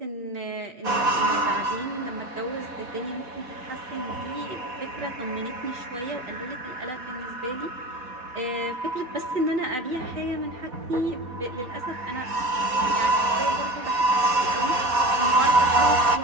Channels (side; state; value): left; late; 4.1 ms